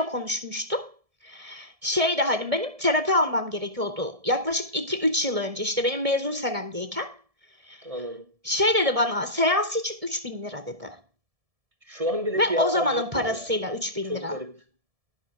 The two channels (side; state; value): left; late; 1.7 ms